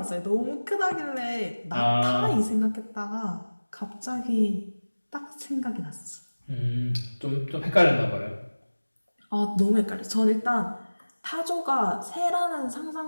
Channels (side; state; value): both; inverted; correlation -1.00